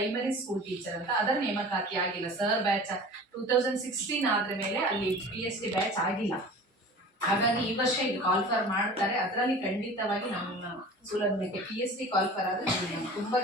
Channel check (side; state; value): both; normal; correlation 0.40